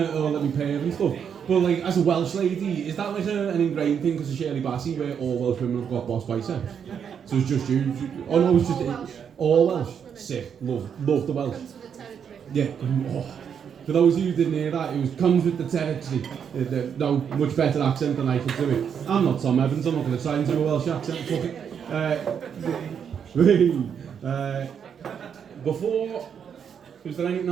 oh, let me pay and stuff. But like, as a Welsh lady, is that like an ingrained thing because of Shirley Bassey, where all Welsh women have got boss biceps? So it's just you? Oh no, it's just all Welsh. Sick, love the Welsh. Yeah, oh. For those of you who didn't hear that, it comes with the territory. No, much better accent than I could do it. I'm not Tom Evans, I'm not going to try and do a Welsh accent, fuck it. Before, is there anything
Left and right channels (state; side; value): quieter; left; 7.6 dB